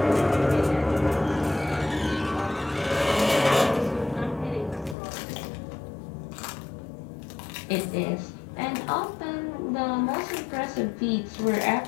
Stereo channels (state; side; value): drops out; right; at 5.0 s